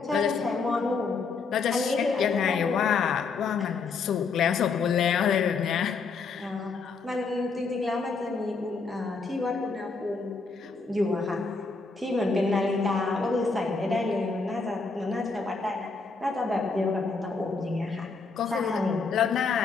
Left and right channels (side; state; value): right; quieter; 4.5 dB